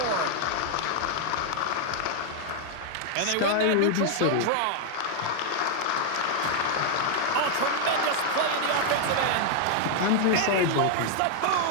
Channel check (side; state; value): both; different; correlation 0.00